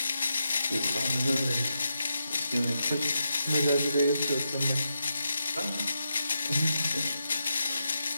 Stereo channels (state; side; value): inverted; both; correlation -0.85